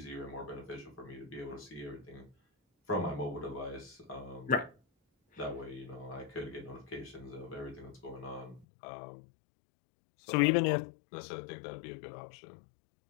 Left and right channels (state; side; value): drops out; right; at 8.7 s